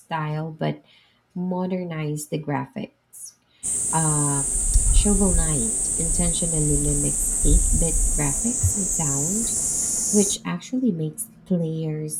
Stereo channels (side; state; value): both; identical; correlation 1.00